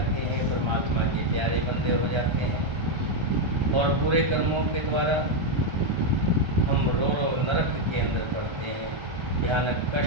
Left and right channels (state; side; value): late; left; 1.3 ms